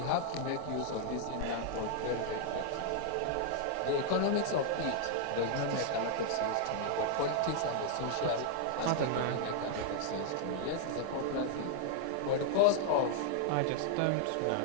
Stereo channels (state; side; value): different; both; correlation 0.00